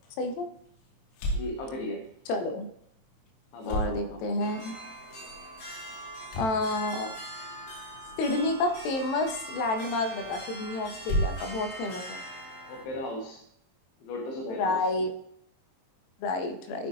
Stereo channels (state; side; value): late; right; 23 ms